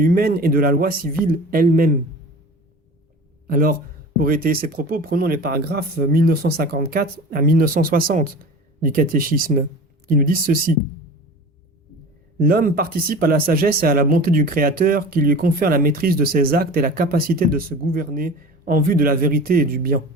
et de la loi civile elle-même. Alors, pour étayer ces propos, prenons les paragraphes 1954 à 1960 du catéchisme, qui nous disent ceci. L'homme participe à la sagesse et à la bonté du Créateur qui lui confère la maîtrise de ses actes et la capacité de se gouverner en vue de la vérité et du bien.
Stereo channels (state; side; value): normal; both; correlation 0.37